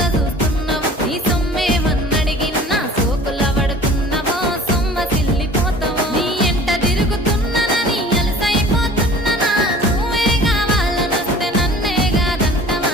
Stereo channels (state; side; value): normal; both; correlation 0.46